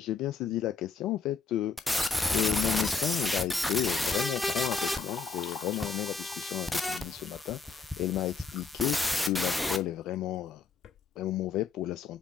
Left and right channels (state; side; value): quieter; right; 5.1 dB